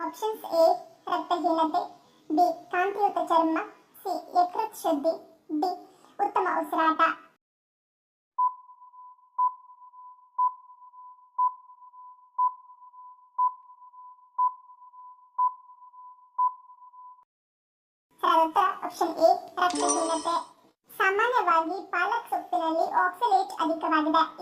ಎ ರಕ್ತಹೀನತೆ, ಬಿ ಕಾಂತಿಯುತ ಚರ್ಮ, ಸಿ ಯಕೃತ್ ಶುದ್ಧಿ, ಡಿ ಉತ್ತಮ ಉಸಿರಾಟ. ಆಪ್ಷನ್ ಎ ರಕ್ತಹೀನತೆ. ಸಾಮಾನ್ಯವಾಗಿ ಪಾಲಕ್ ಸೊಪ್ಪಿನಲ್ಲಿ ಆಕ್ಸಲೇಟ್ ಅಧಿಕವಾಗಿದೆ.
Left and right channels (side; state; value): both; identical; correlation 1.00